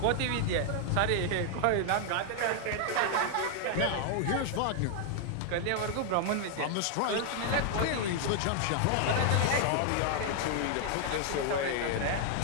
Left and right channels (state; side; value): different; both; correlation 0.00